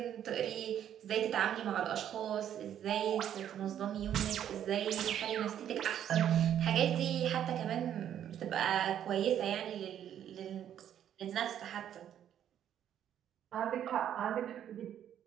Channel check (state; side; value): quieter; left; 10.1 dB